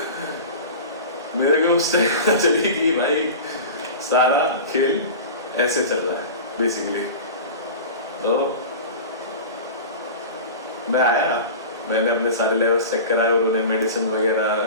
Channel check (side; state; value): both; inverted; correlation -0.32